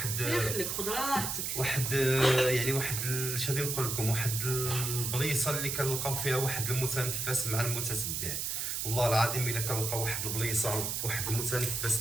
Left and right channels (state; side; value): noise; right; hiss, 2 dB below the sound